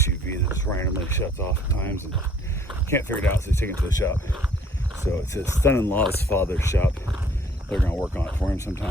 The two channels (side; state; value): both; normal; correlation 0.58